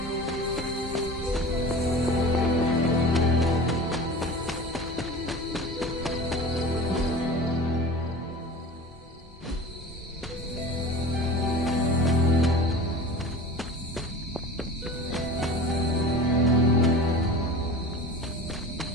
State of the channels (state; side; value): normal; both; correlation 0.35